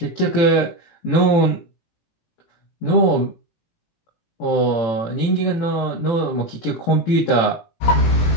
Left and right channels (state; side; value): late; right; 18 ms